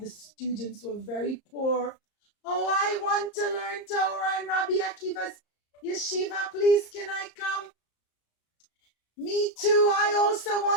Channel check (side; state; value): right; late; 34 ms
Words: students were very poor. Oh, I want to learn Torah in Rabbi Akiva's yeshiva. Please, can I come? Me too. I also